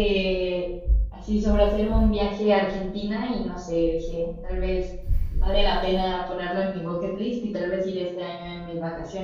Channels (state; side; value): identical; both; correlation 1.00